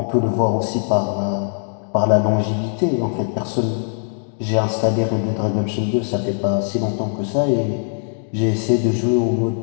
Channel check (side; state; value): right; silent; 64 dB below the other